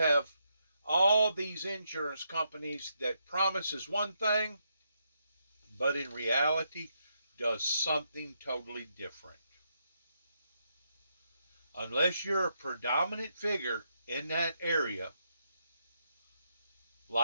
all these insurance companies that promises one thing, but in reality does something totally different. Unless you're a predominant figure in that area,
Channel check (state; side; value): inverted; both; correlation -0.80